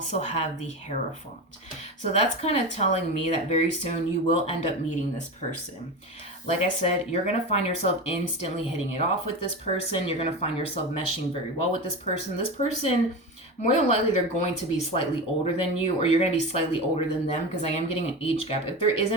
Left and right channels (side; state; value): both; normal; correlation 0.24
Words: have the Hierophant. So that's kind of telling me that very soon you will end up meeting this person. Like I said, you're going to find yourself instantly hitting it off with this person. You're going to find yourself meshing very well with this person. This person, more than likely, they're going to be slightly older than you, or you're going to be slightly older than them, because I am getting an age gap. If there